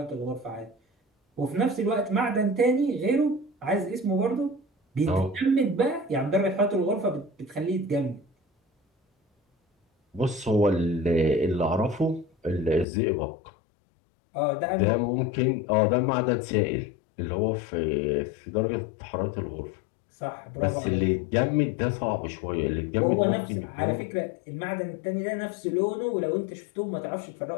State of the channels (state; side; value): drops out; right; at 12.9 s